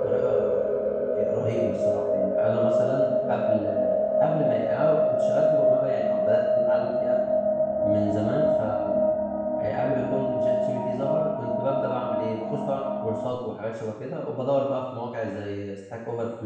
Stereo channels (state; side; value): identical; both; correlation 1.00